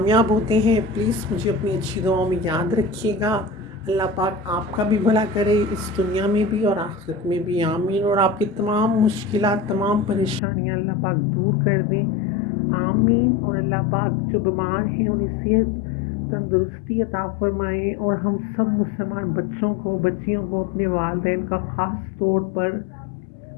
होते हैं। प्लीज़ मुझे अपनी अच्छी दुआओं में याद रखिएगा। अल्लाह पाक आपका भी भला करे इस दुनिया में भी और आखिरत में भी, आमीन। और आपकी तमाम मुश्किलात, तमाम परेशानियां अल्लाह पाक दूर कर दें, आमीन। और अल्लाह पाक जो बीमार हैं उन्हें सेहत तंदुरुस्ती अता फ़रमाएँ। और हम सब मुसलमान बच्चों को, बच्चियों को अपने वालिदैन का ख़ास तौर पर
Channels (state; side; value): drops out; right; at 10.4 s